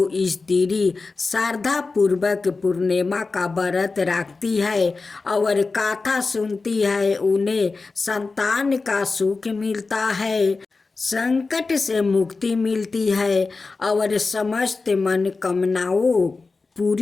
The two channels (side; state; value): right; quieter; 4.0 dB